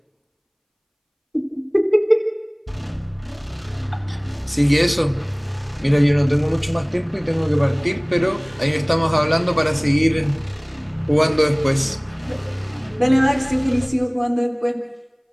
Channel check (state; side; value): identical; both; correlation 1.00